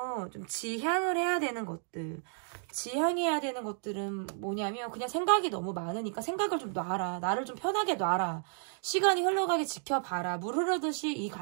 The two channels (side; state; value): left; silent; digital silence